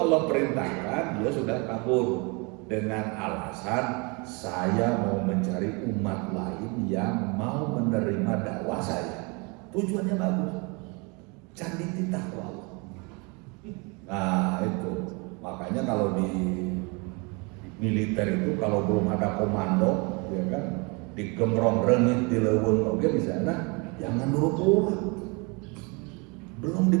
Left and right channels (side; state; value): left; quieter; 30.2 dB